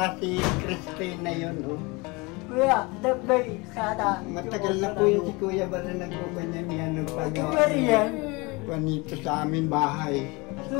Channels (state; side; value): quieter; right; 26.1 dB